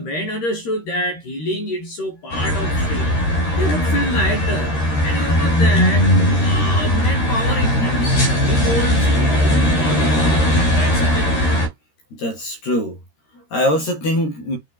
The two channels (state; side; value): late; right; 13 ms